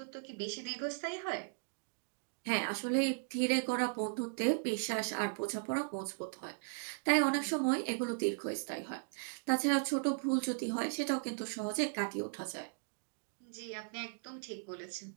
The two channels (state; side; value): silent; left; digital silence